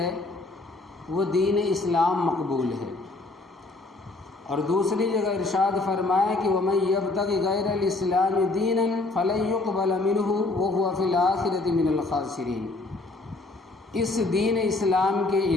وہ دین اسلام مقبول ہے۔ اور دوسری جگہ ارشاد فرمایا کہ وَمَن يَبْتَغِ غَيْرَ الْإِسْلَامِ دِينًا فَلَن يُقْبَلَ مِنْهُ وَهُوَ فِي الْآخِرَةِ مِنَ الْخَاسِرِينَ، اس دین اسلام کے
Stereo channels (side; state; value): right; quieter; 3.2 dB